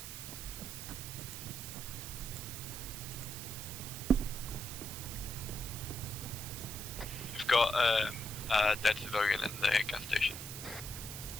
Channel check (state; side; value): noise; right; hiss, 8 dB below the sound